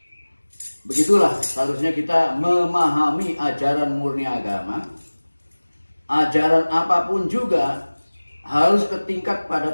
begitulah seharusnya kita memahami ajaran murni agama. Ajaran apapun juga harus ke tingkat pada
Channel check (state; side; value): inverted; both; correlation -1.00